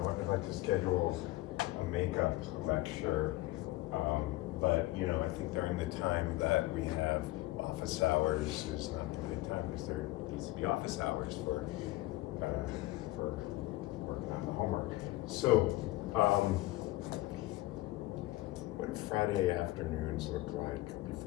I'd like to schedule a makeup lecture, but you know, I think during the time that we have office hours is not the right time because there needs to be office hours for working on the homework. So, what do Friday afternoons look like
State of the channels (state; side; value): quieter; right; 18.3 dB